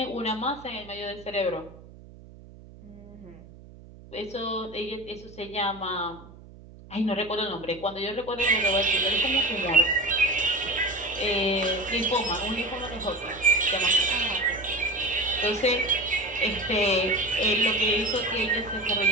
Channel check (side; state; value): right; noise; hum, 20 dB below the sound